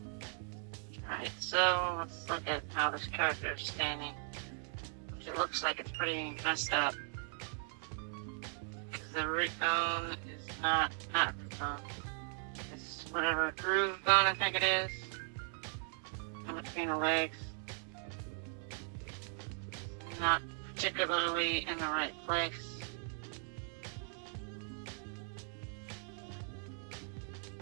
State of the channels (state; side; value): silent; left; 52 dB below the other